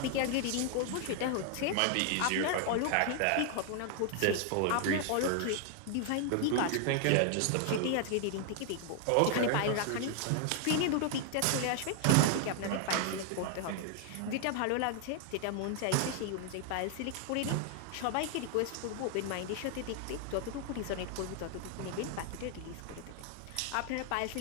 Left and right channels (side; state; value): both; different; correlation 0.00